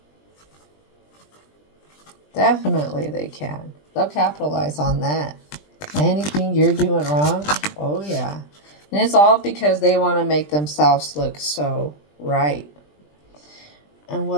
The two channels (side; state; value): right; late; 20 ms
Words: Definitely they can. They'll capitalize on that. Anything you're doing wrong, oh yeah. And it's all because they want to make themselves look so right. And